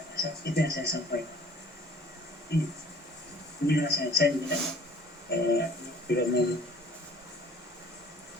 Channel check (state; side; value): normal; both; correlation 0.52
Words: rasa itu yang saya sampaikan. Inilah saya tidak mau